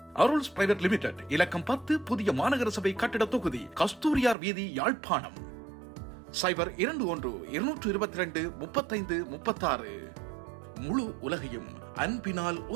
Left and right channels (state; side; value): drops out; left; at 4.4 s